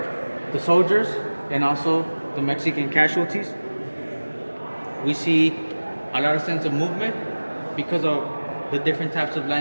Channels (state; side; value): inverted; both; correlation -1.00